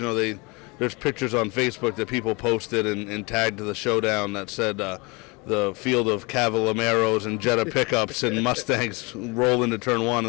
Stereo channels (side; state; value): right; quieter; 27.7 dB